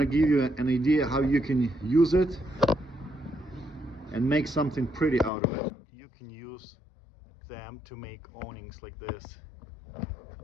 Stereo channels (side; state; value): right; drops out; at 5.3 s